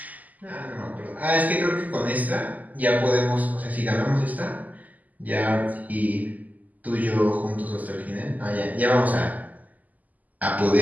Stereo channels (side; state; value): left; late; 0.079 ms